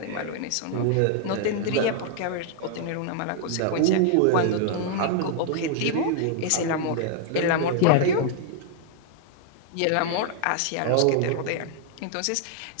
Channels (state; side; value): different; both; correlation -0.01